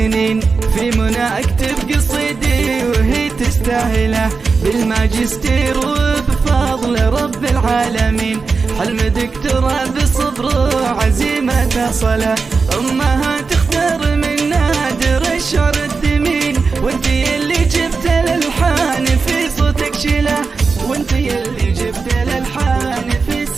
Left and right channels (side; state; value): left; quieter; 4.6 dB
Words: في منى اكتب قصيدي وهي تستاهله، بالماجستير وبفضل رب العالمين، حلم دكتوراه بصبر وعزيمة صلة، امها تختار من نادر الشعر الثمين، وانتي اللي جبت الالحان في صوتك شله، وانتي اللي جبت الالحان في